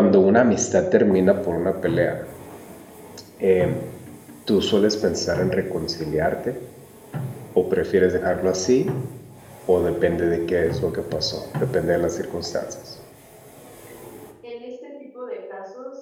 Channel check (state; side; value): identical; both; correlation 1.00